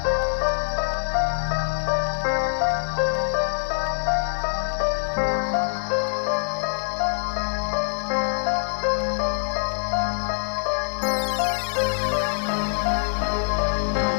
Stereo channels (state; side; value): silent; right; 62 dB below the other